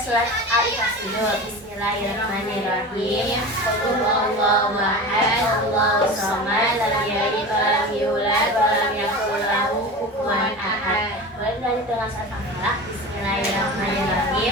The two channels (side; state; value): both; normal; correlation 0.31